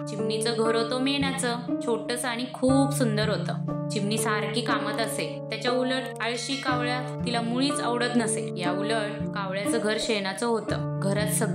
चिमणीचं घर होतं मेणाचं, छोटंसं आणि खूप सुंदर होतं। चिमणी सारखी कामात असे, त्याच्या उलट आळशी कावळा तिला मुळीच आवडत नसे। या उलट कावळ्याचं घर शेणाचं होतं। घरात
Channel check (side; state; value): both; identical; correlation 1.00